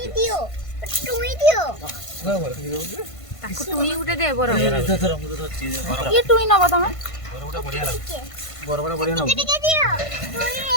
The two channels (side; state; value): right; late; 1.5 ms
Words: ତାକୁ ଟୁଇ ଗୋଟେ ଦେ ବର। କିଏ ଟୁଇ ନବ ତମେ? ବଢିଆ ଲାଗୁଛି ବରଗଡ଼ ବଢିଆ ଲାଗୁଛି